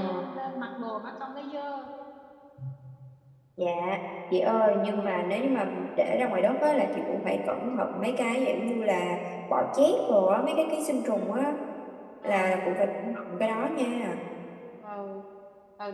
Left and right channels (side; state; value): both; identical; correlation 1.00